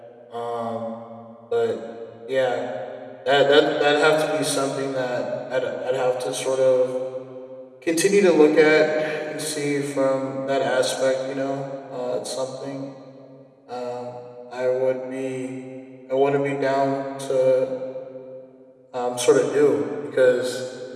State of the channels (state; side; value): identical; both; correlation 1.00